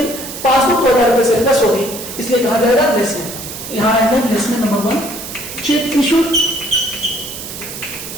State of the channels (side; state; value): right; noise; hiss, 10 dB below the sound